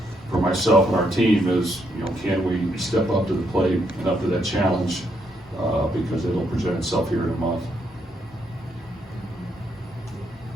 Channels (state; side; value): normal; both; correlation 0.76